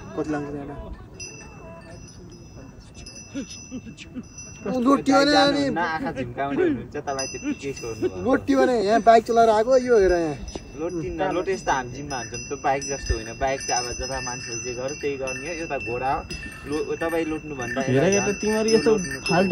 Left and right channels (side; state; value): both; identical; correlation 1.00